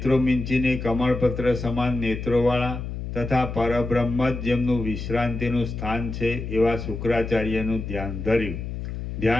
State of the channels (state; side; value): noise; left; hum, 6 dB below the sound